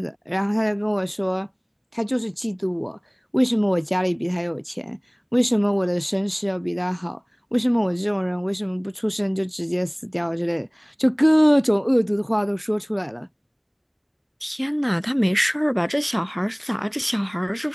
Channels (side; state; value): both; identical; correlation 1.00